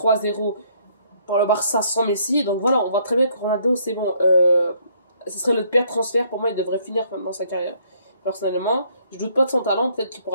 par le Barça sans Messi. Donc voilà, on voit très bien que Ronaldo, c'est bon. Ce serait le pire transfert. Pour moi, il devrait finir maintenant sa carrière. Personnellement, je doute pas de son talent. Peut-être qu'il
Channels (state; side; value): inverted; both; correlation -0.66